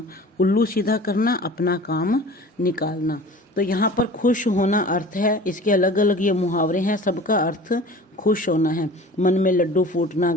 उल्लू सीधा करना, अपना काम निकालना। तो यहाँ पर खुश होना अर्थ है, इसके अलग अलग ये मुहावरे हैं, सबका अर्थ खुश होना है। मन में लड्डू फूटना,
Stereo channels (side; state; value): both; normal; correlation 0.42